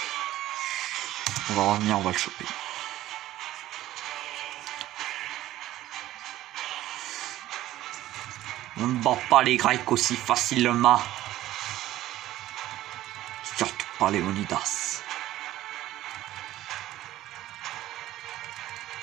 On va revenir, on va le choper. On ne bat pas les Grecs aussi facilement. Surtout pas les Léonidas.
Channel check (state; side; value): quieter; left; 14.5 dB